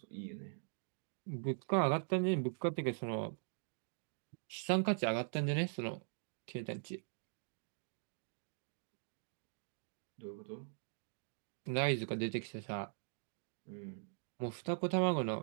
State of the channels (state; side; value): silent; left; digital silence